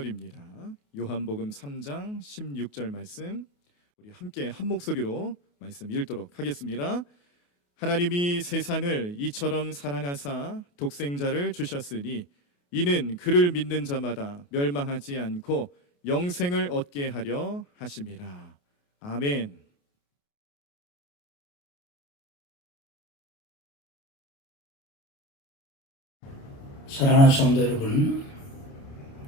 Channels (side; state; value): right; late; 28 ms